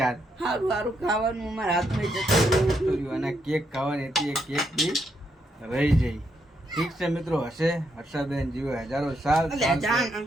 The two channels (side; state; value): both; normal; correlation 0.78